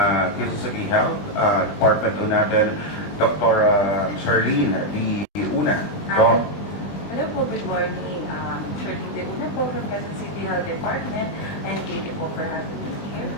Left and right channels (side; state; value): right; late; 20 ms